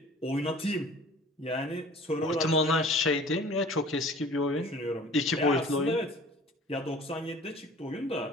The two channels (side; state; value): both; normal; correlation 0.47